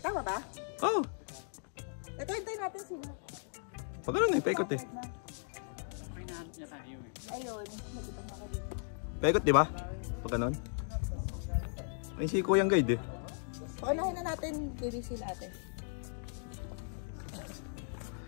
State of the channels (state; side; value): silent; right; digital silence